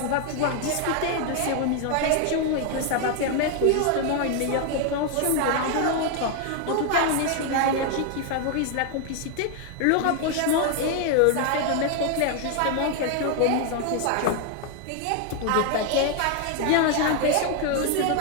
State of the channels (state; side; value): different; both; correlation 0.00